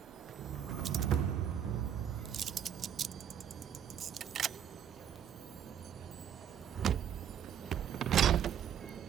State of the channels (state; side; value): quieter; left; 9.1 dB